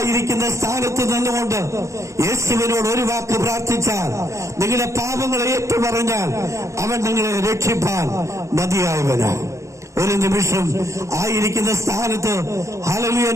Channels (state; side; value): late; left; 0.15 ms